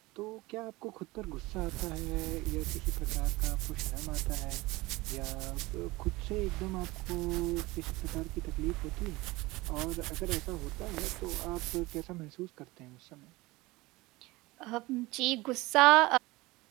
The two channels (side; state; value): left; quieter; 21.2 dB